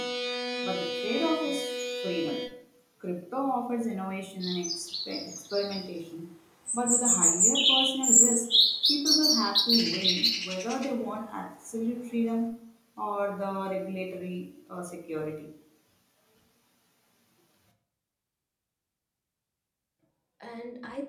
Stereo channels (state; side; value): identical; both; correlation 1.00